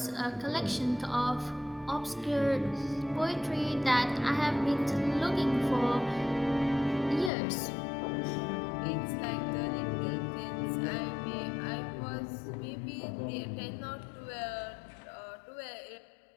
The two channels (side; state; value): right; drops out; at 7.3 s